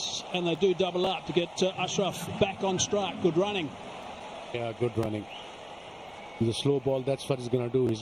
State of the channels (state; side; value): noise; right; rumble, 28 dB below the sound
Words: and they do double up to get Ashraf back on strike. Good running. Yeah, good running. The slow ball, that's what he's going to do.